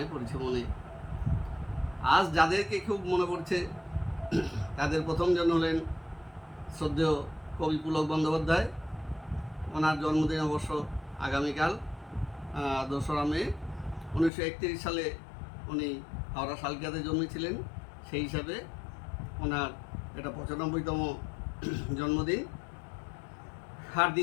পড়ছে মনে। আজ যাদেরকে খুব মনে পড়ছে তাদের প্রথমজন হলেন শ্রদ্ধেয় কবি পুলক বন্দ্যোপাধ্যায়। ওনার জন্মদিন অবশ্য আগামীকাল 2রা মে। 1931 সালে উনি হাওড়া শালকিয়াতে জন্মেছিলেন। সেই হিসাবে ওনার এটা 95তম জন্মদিন। আর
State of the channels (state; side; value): drops out; right; at 14.3 s